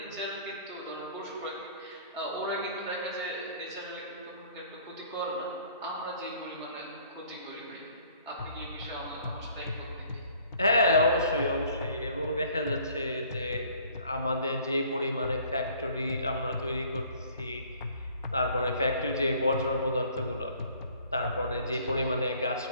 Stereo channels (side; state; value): both; inverted; correlation -0.56